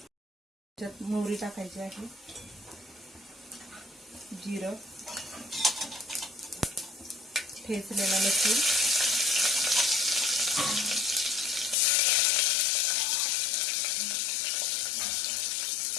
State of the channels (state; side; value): drops out; right; at 11.8 s